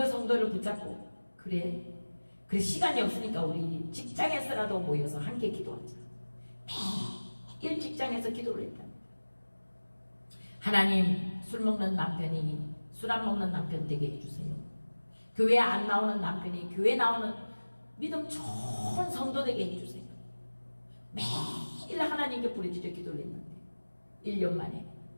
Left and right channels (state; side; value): inverted; both; correlation -1.00